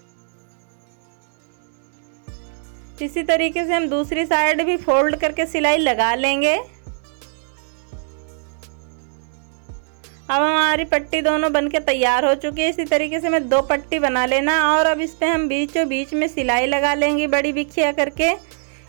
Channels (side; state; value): left; silent; digital silence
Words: इसी तरीके से हम दूसरी साइड भी फोल्ड करके सिलाई लगा लेंगे। अब हमारी पट्टी दोनों बनके तैयार हो चुकी है। इसी तरीके से हमें 2 पट्टी बना लेना और अब इस पे हम बीचों बीच में सिलाई लगा लेंगे बड़ी बिखिया करके।